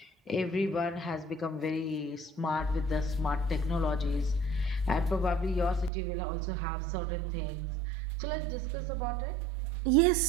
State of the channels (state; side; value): drops out; left; at 5.9 s